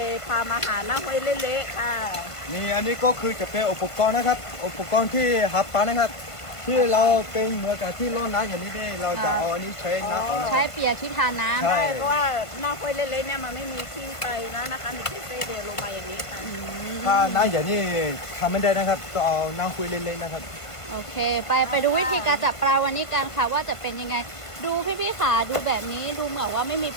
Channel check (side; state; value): right; late; 1.5 ms